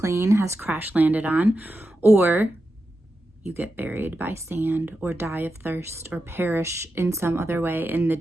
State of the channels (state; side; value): normal; both; correlation 0.89